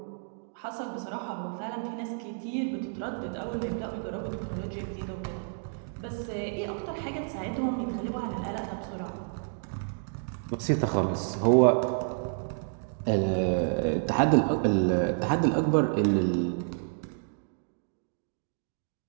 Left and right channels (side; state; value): left; silent; digital silence